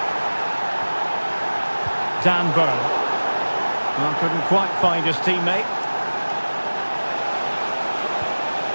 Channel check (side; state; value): both; inverted; correlation -1.00